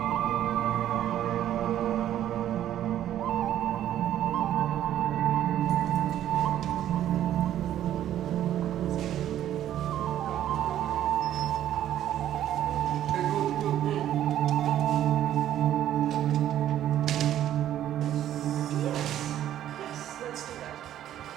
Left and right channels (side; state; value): left; quieter; 11.7 dB